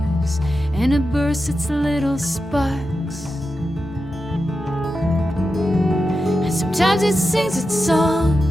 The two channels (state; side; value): normal; both; correlation 0.90